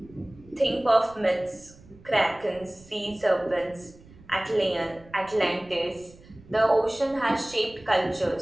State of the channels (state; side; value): noise; right; rumble, 23 dB below the sound